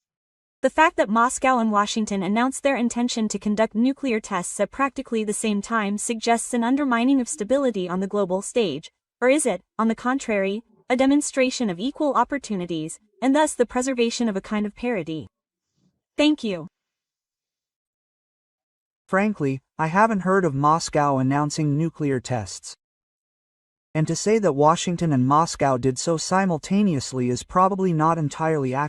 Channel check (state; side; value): identical; both; correlation 1.00